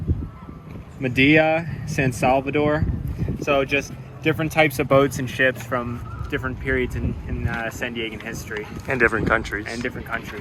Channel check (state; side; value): identical; both; correlation 1.00